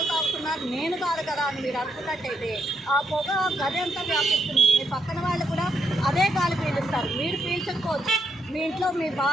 తాగుతున్నారు, నేను కాదు కదా అని మీరు అనుకున్నట్టయితే ఆ పొగ గది అంతా వ్యాపిస్తుంది. మీ పక్కన వాళ్ళు కూడా అదే గాలి పీలుస్తారు. మీరు పీల్చకపోవచ్చు, మీ ఇంట్లో మీ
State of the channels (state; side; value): normal; both; correlation 0.78